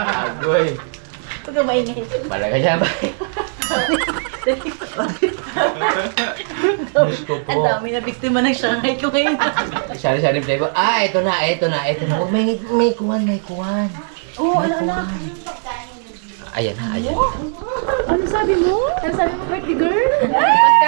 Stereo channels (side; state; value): left; silent; digital silence